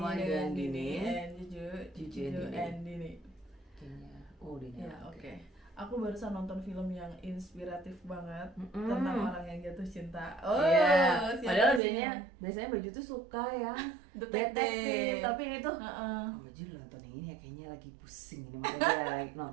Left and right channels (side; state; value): left; drops out; at 11.8 s